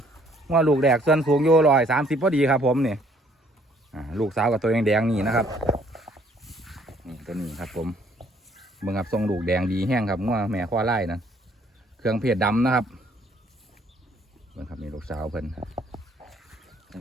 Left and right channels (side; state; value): both; normal; correlation 0.63